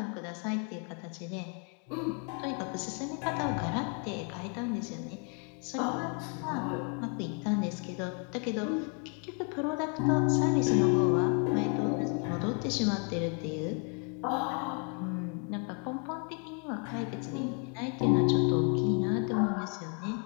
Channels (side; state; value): right; quieter; 38.3 dB